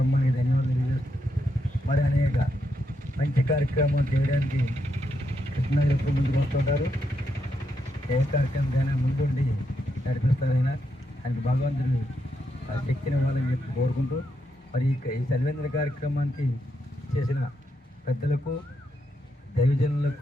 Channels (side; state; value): both; normal; correlation 0.81